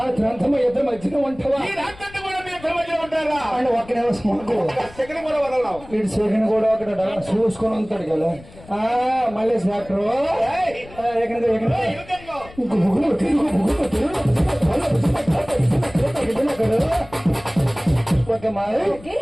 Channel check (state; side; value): noise; left; rumble, 20 dB below the sound